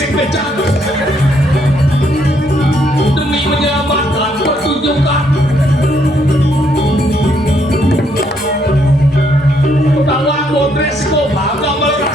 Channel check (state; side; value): normal; both; correlation 0.72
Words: demi menyelamatkan pertunjukan. Tawan bodres ko bangga